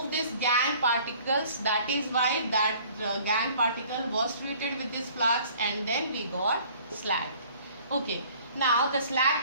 this gangue particles. That is why that gangue particle was treated with this flux and then we got slag. Okay, now the slag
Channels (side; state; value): both; inverted; correlation -0.53